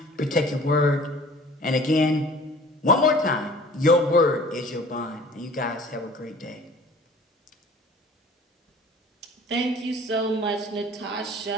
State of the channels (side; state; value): both; normal; correlation 0.47